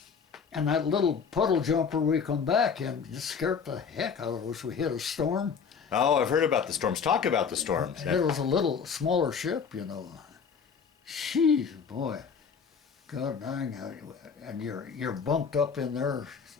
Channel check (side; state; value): right; quieter; 6.2 dB